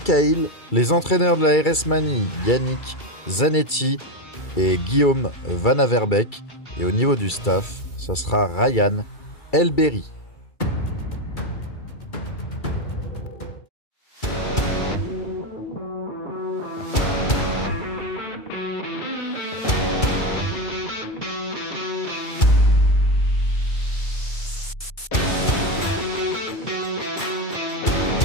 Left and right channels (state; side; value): late; right; 2.3 ms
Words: Les entraîneurs de la RS Mani, Yannick Zanetti et Guillaume Van Averbeek. Et au niveau du staff, ça sera Ryan Elberry.